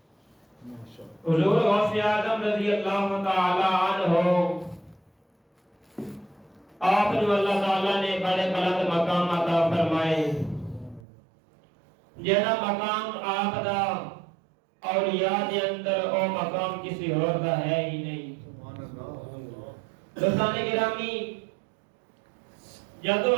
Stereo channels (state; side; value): drops out; left; at 11.0 s